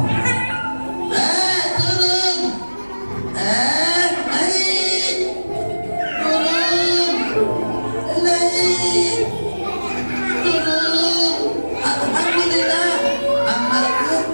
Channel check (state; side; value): inverted; both; correlation -1.00